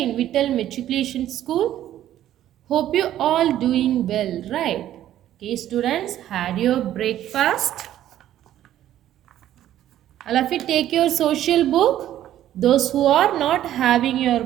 in Vittal Matriculation School. Hope you all doing well, right? Okay, students, had your breakfast? All of you take your social book. Those who are not having your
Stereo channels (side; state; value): left; quieter; 12.3 dB